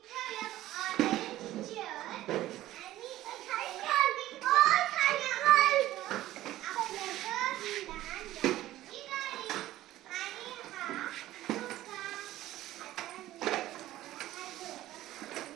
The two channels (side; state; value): left; quieter; 15.0 dB